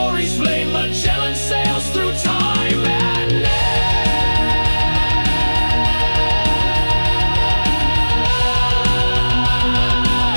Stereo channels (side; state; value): both; inverted; correlation -1.00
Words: flame. Magellan sails through time and name.